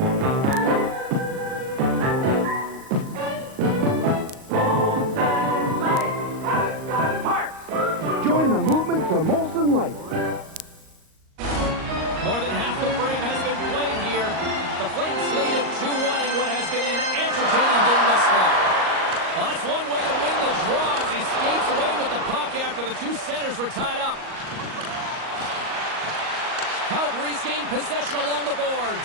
Join the movement to Molson Light. More than half the frame has been played here. The Flames lead at 2-1 in what has been an entertaining game thus far. Well, that's one way to win the draw as he skates away with the puck after the two centers were tied up. Calgary's gained possession along the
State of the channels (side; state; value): left; late; 38 ms